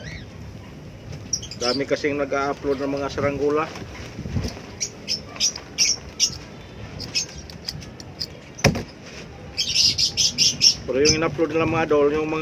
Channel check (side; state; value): both; identical; correlation 1.00